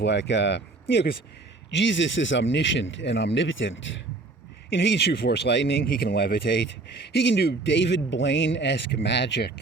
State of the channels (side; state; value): left; quieter; 3.5 dB